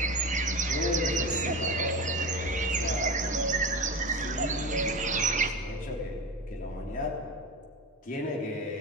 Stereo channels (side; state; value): both; normal; correlation 0.27